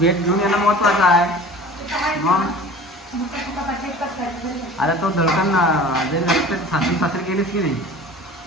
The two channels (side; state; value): both; normal; correlation 0.41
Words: घेऊन येणं महत्वाचं आहे. मग आता तो धडकन सासरी गेलीस की नाही